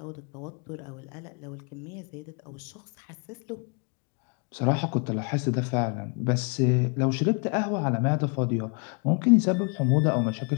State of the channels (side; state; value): right; quieter; 35.2 dB